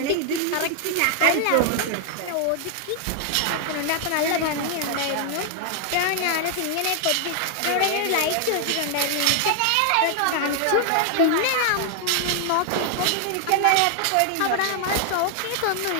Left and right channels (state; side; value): different; both; correlation 0.00